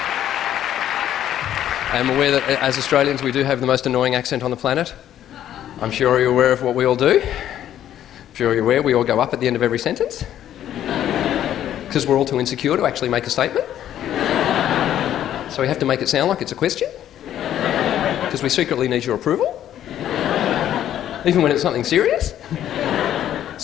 I'm aware that as Australians we do have the most annoying accent on the planet. I'm sure you're aware of what we all do. I'm sure you're aware we all go up at the end of every sentence. Because we're all too insecure to actually make a statement. So we have to make it sound like it's a question. Because we secretly need your approval. Even when it's something serious.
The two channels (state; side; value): quieter; right; 11.3 dB